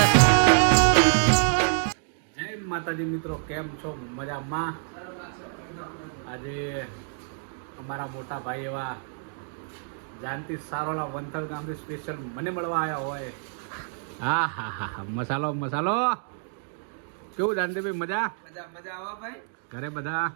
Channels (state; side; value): silent; left; 60 dB below the other